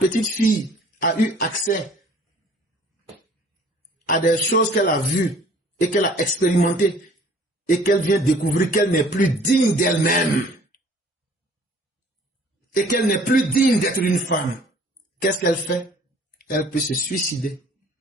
fille a eu accès à des choses qu'elle a vues et qu'elle a expérimentées et qu'elle vient découvrir qu'elle n'est plus digne d'elle-même et qu'elle n'est plus digne d'être une femme, qu'est-ce qu'elle fait? Elle peut se suicider.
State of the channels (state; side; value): normal; both; correlation 0.53